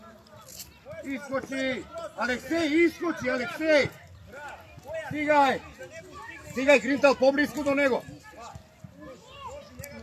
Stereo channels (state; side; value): identical; both; correlation 1.00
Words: Iskoči. Aleksej, iskoči, Aleksej. Stigaj, Grintal, poblisku do nego.